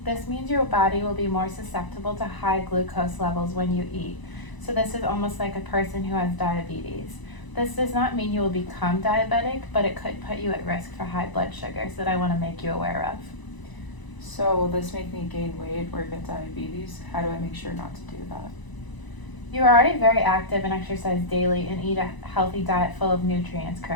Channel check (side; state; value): right; late; 1.0 ms